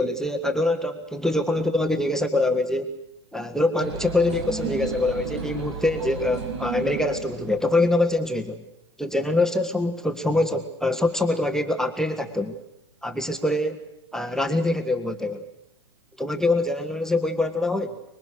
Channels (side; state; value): both; normal; correlation 0.73